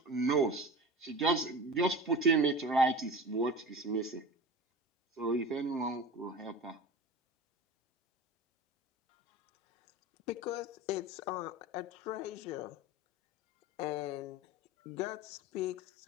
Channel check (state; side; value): normal; both; correlation 0.33